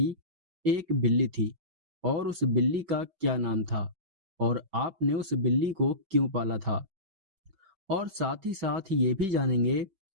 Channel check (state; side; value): late; left; 5.2 ms